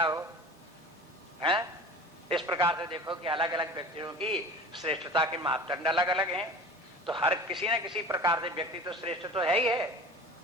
हो, हैं? इस प्रकार से देखो कि अलग अलग व्यक्तियों की श्रेष्ठता के मापदंड अलग अलग हैं। तो हर किसी न किसी प्रकार से व्यक्ति तो श्रेष्ठ तो है ही है।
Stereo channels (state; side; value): normal; both; correlation 0.39